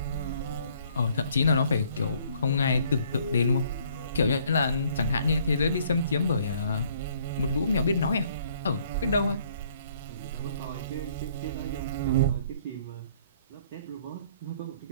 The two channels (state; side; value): inverted; both; correlation -0.62